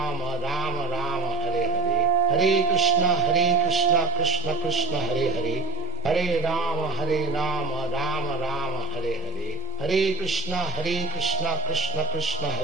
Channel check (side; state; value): left; quieter; 5.9 dB